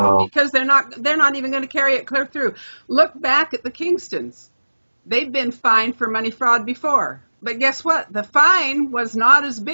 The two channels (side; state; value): both; inverted; correlation -1.00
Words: because they're not even going to carry it clear through. Look back at the Kingstons. They've been fined for money fraud before. But guess what? The fine was not as